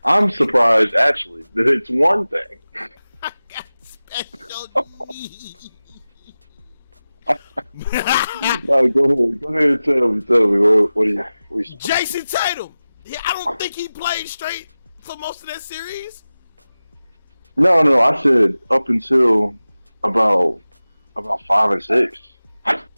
I'm surprised, actually, that it's one thing. I got special needs. No, go ahead and tell me. What do you Jason Tatum. Yeah, I don't think he played straight for most of that series. No, I said up until about 5 and 6.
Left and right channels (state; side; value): inverted; both; correlation -0.96